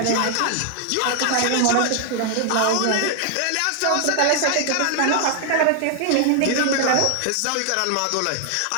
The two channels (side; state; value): both; different; correlation 0.00